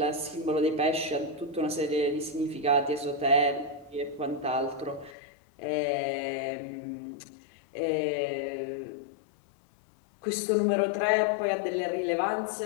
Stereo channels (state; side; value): drops out; right; at 5.2 s